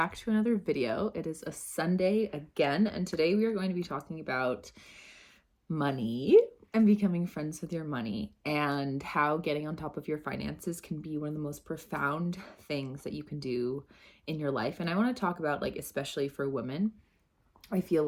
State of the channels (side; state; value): both; identical; correlation 1.00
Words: to another video. It is a Sunday again, and today we are going to be talking about money and becoming friends with your money and how getting on top of your finances can be one of the most profound things that you can do in your life. And I want to talk about, like, especially for women, I feel